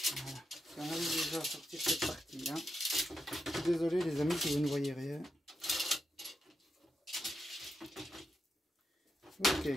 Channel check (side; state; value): both; normal; correlation 0.85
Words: On a déjà à sortir cette partie là. Je suis désolé les amis si vous ne voyez rien. Ok.